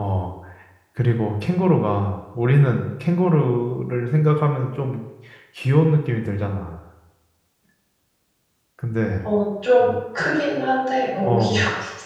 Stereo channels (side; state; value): both; identical; correlation 1.00